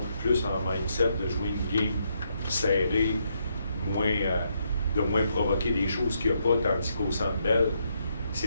plus en mindset de jouer une game serrée, de moins provoquer des choses qu'il n'y a pas, tandis qu'au Centre Bell,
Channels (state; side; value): inverted; both; correlation -0.76